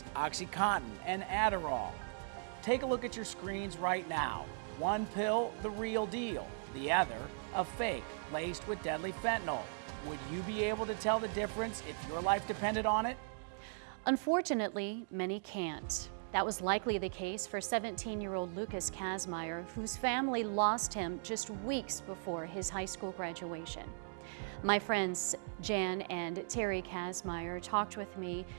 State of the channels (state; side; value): silent; left; digital silence